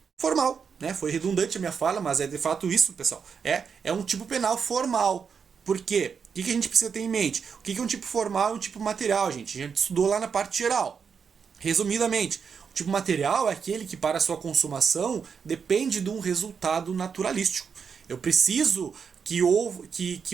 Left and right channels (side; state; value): left; quieter; 6.3 dB